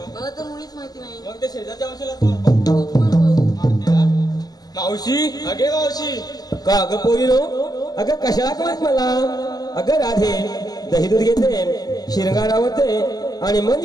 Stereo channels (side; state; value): right; late; 0.19 ms